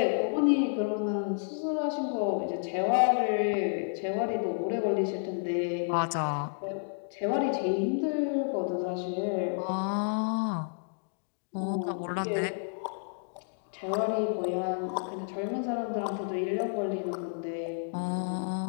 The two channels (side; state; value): right; silent; digital silence